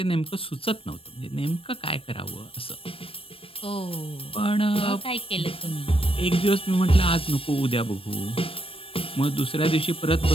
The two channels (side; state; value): right; late; 0.27 ms